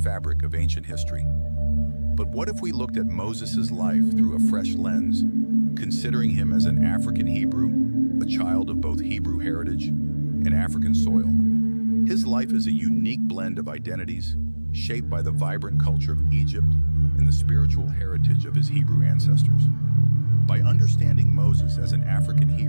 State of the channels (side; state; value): both; inverted; correlation -1.00